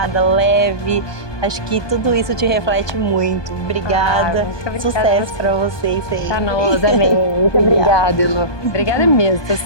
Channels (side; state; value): right; late; 1.2 ms